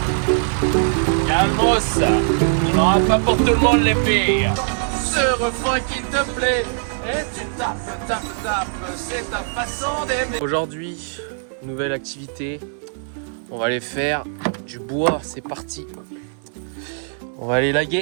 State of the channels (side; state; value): left; silent; 65 dB below the other